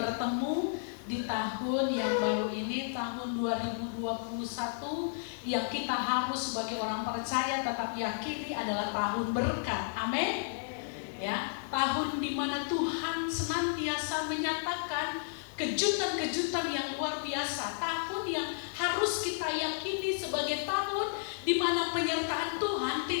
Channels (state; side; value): silent; right; 56 dB below the other